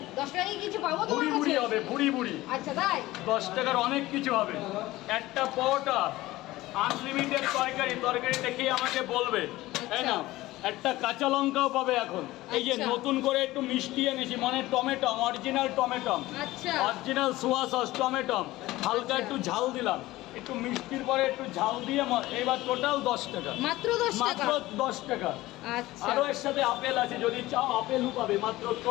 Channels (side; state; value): right; quieter; 17.7 dB